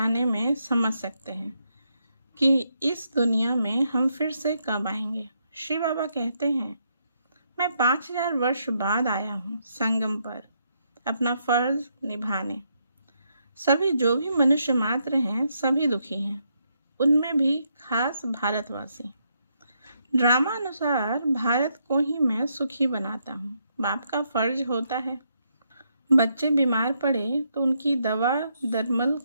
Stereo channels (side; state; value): both; inverted; correlation -0.78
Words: में समझ सकते हैं कि इस दुनिया में हम फिर से कब आएंगे। श्री बाबा कहते हैं, मैं 5000 वर्ष बाद आया हूँ संगम पर अपना फर्ज निभाने। सभी जो भी मनुष्य मात्र हैं सभी दुखी हैं, उनमें भी खास भारतवासी। ड्रामा अनुसार भारत को ही मैं सुखी बनाता हूँ। बाप का फर्ज होता है। बच्चे बीमार पड़े तो उनकी दवा दरमल